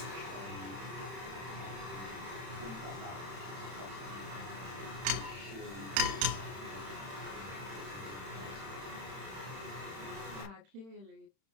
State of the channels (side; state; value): left; late; 31 ms